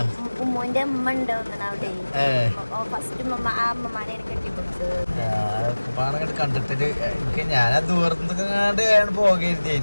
ഉമ്മുന്റെ ഉമ്മ ഉണ്ട് അവിടെ ഫസ്റ്റ് പാടങ്ങോട്ട് കണ്ടിട്ട് എനിക്ക് ഞാൻ ദൂരത്തുനിന്ന്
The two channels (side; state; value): both; inverted; correlation -1.00